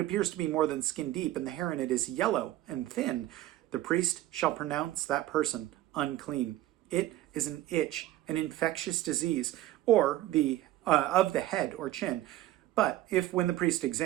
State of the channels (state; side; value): quieter; left; 14.8 dB